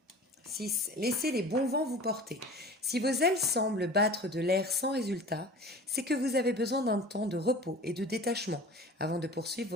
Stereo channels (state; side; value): normal; both; correlation 0.40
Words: 6. Laissez les bons vents vous porter. Si vos ailes semblent battre de l'air sans résultat, c'est que vous avez besoin d'un temps de repos et de détachement avant de poursuivre